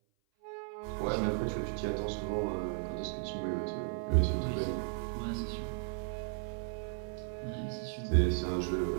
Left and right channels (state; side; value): silent; left; 54 dB below the other